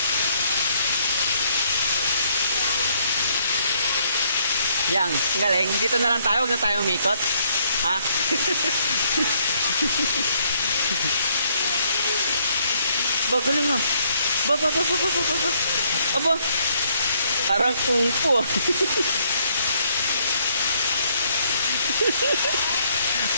Yang, galing. Dito na lang tayo, huwag na tayo umikot. Ha? Ba, galing nga. Ba. Aba. Parang kung fu.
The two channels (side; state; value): both; inverted; correlation -0.68